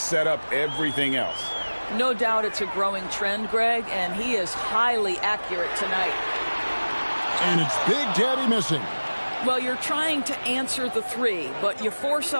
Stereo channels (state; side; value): inverted; both; correlation -1.00